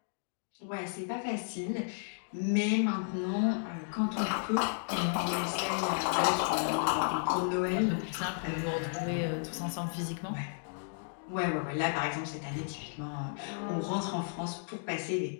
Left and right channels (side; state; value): right; silent; digital silence